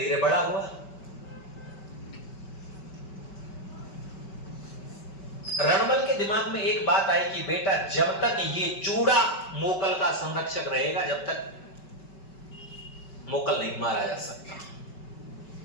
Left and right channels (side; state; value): right; late; 5.2 ms